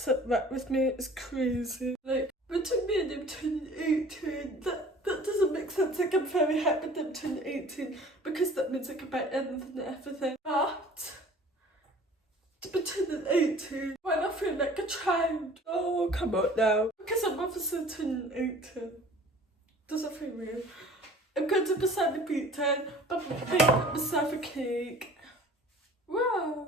right with me, it's crazy. Like between me and him turning 18, that doesn't make sense. Like I'm very happy that I'm turning 18 because that means I can buy anything and everything. But to be turning 18 when I feel like a child. Oh, come on now. Because I'm obviously turning 18. Does it feel weird? I'm going to be celebrating by baking myself a cake.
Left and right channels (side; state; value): both; normal; correlation 0.47